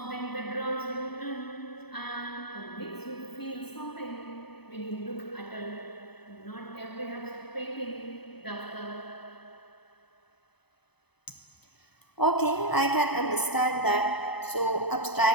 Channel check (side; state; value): right; late; 0.98 ms